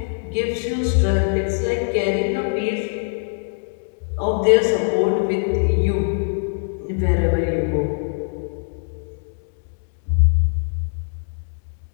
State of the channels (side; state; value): right; silent; digital silence